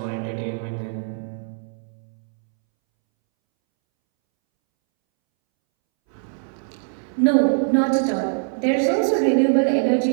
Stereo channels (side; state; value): left; silent; 64 dB below the other